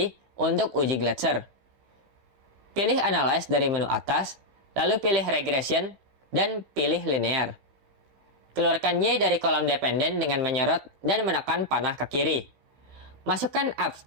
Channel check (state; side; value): late; left; 15 ms